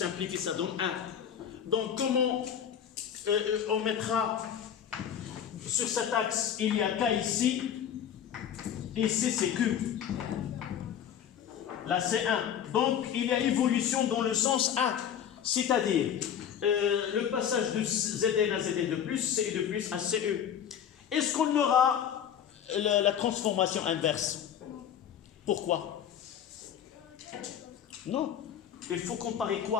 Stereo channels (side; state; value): right; quieter; 9.1 dB